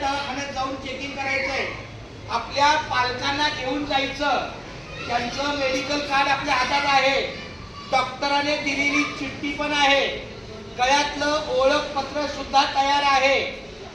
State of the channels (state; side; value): identical; both; correlation 1.00